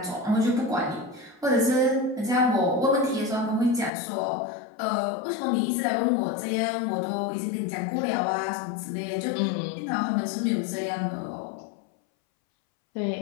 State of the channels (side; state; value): right; drops out; at 3.9 s